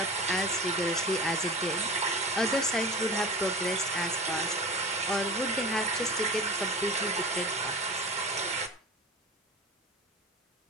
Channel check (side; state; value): both; normal; correlation 0.34